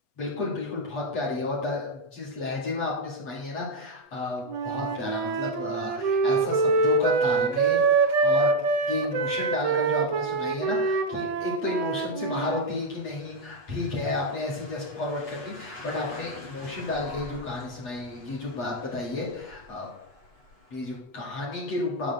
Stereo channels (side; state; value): right; late; 8.2 ms